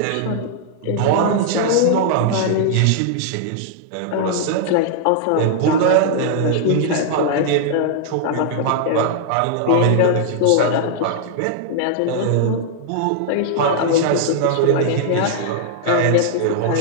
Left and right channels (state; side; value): different; both; correlation -0.01